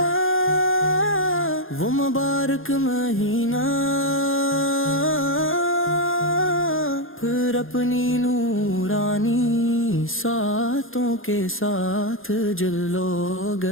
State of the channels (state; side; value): late; right; 0.60 ms